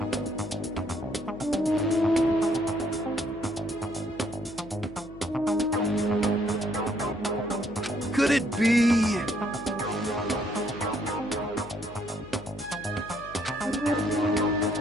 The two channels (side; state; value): left; noise; hum, 16 dB below the sound